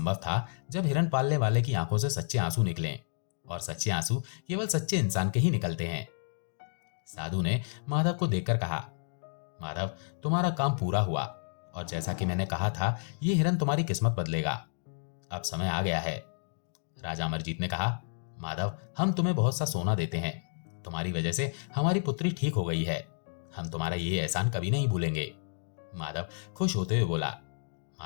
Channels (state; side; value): silent; right; digital silence